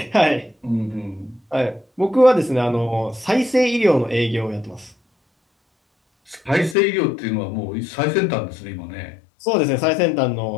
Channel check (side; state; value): right; drops out; at 6.8 s